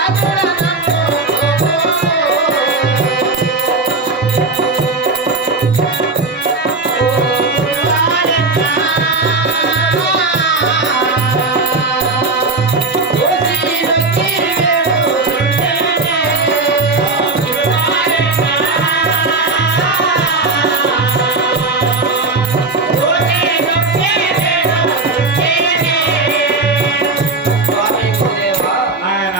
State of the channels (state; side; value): quieter; left; 3.6 dB